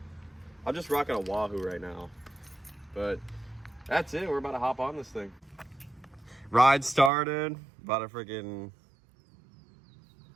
I'm just rocking a Wahoo right now, but that's it. We're about to hop on this thing. Ride started. About a freaking,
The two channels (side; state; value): left; drops out; at 7.1 s